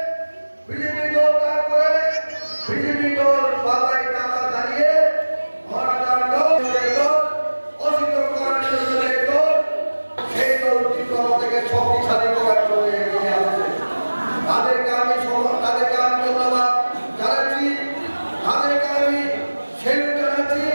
বিজেপি দল ত্যাগ করে বিজেপি দল বাবাই টাকা দাঁড়িয়ে মহারাজার দল অস্বীকার করার জন্য দল সেই দল ত্রিপুরা থেকে শক্তিশালী করার জন্য এগিয়ে আসছে। তাদেরকে আমি ধন্যবাদ জানাচ্ছি, তাদেরকে আমি সেলুট জানাচ্ছি।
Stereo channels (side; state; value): both; inverted; correlation -1.00